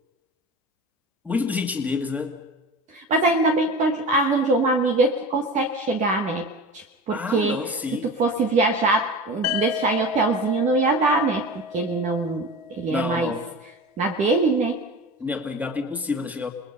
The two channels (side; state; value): both; normal; correlation 0.33